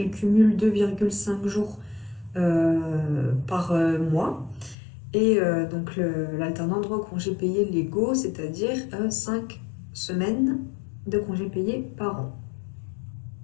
cumule 2,5 jours par mois. Et donc l'alternant a droit aux congés payés légaux, c'est-à-dire 5 semaines de congés payés par an.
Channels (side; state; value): right; drops out; at 4.8 s